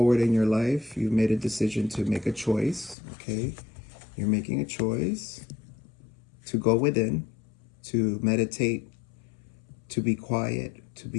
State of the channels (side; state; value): right; drops out; at 3.0 s